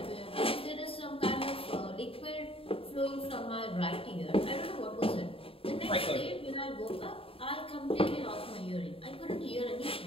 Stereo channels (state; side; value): late; right; 0.27 ms